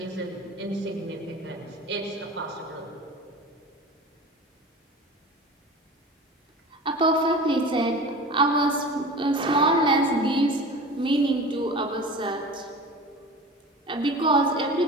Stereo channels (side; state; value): both; normal; correlation 0.36